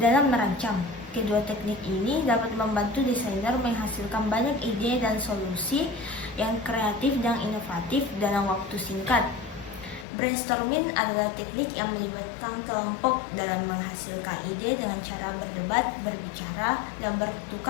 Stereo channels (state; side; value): drops out; right; at 10.1 s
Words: merancang. Kedua teknik ini dapat membantu desainer menghasilkan banyak ide dan solusi yang kreatif dan inovatif dalam waktu singkat. Brainstorming adalah teknik yang melibatkan kelompok dalam menghasilkan ide dengan cara berdebat, berbicara, dan